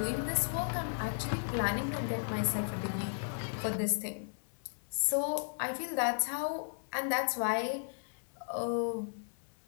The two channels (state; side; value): silent; right; digital silence